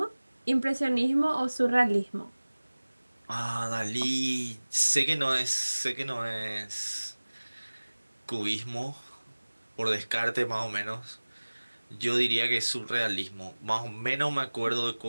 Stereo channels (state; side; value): inverted; both; correlation -1.00